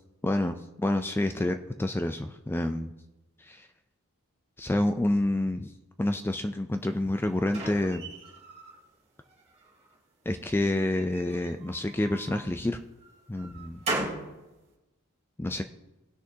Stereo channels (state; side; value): normal; both; correlation 0.87